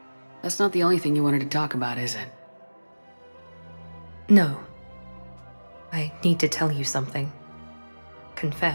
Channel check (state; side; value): inverted; both; correlation -1.00